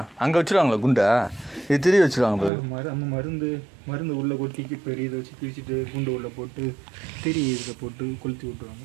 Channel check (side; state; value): left; drops out; at 2.5 s